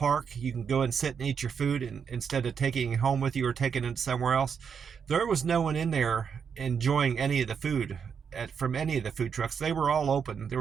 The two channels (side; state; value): left; quieter; 6.8 dB